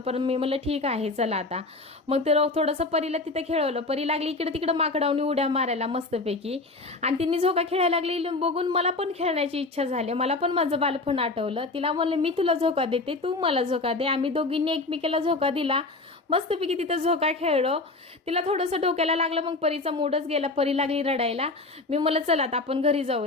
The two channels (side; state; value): right; quieter; 3.3 dB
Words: मी म्हणलं ठीक आहे चला आता. मग ते थोडंसं परीला तिथं खेळवलं. परी लागली इकडे तिकडे माकडावून उड्या मारायला मस्तपैकी. आणि तिने झोका खेळायला लागली बघून मला पण खेळण्याची इच्छा झाली. मला पण माझं बालपण आठवलं. तिला म्हणलं मी तुला झोका देते, तू मला झोका दे. आम्ही दोघींनी एकमेकीला झोका दिला. मस्तपैकी तिथं झोका खेळलो. तिला थोडंसं डोक्याला लागलं, मग परीचा मूडच गेला. परी लागली रडायला. मी म्हणलं चला आता आपण घरी